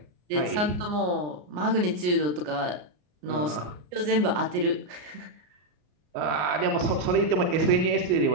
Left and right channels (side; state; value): left; late; 33 ms